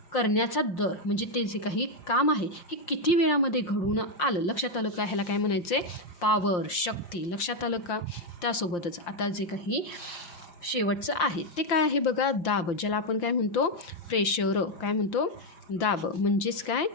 करण्याचा दर म्हणजे ते जे काही काम आहे हे किती वेळामध्ये घडून आलं? लक्षात आलं का? ह्याला काय म्हणायचं आहे? पॉवर. शक्ती. लक्षात आलं का? त्यासोबतच आता जे काही शेवटचं आहे ते काय आहे बघा? दाब. ज्याला आपण काय म्हणतो? प्रेशर. काय म्हणतो? दाब म्हणजेच काय?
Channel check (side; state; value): right; late; 5.8 ms